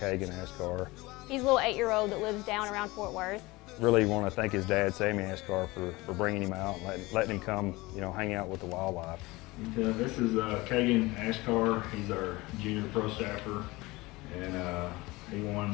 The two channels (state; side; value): quieter; right; 21.7 dB